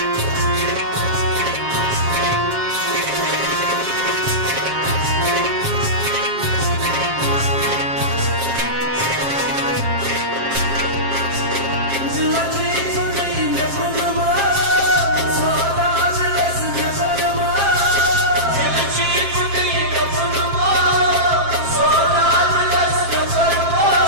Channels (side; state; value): left; late; 7.5 ms